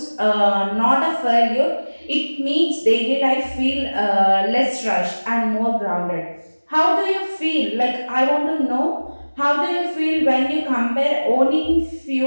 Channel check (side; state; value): both; inverted; correlation -1.00